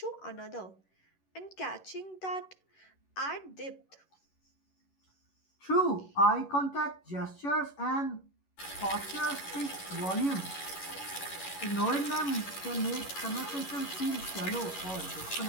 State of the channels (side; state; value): right; late; 11 ms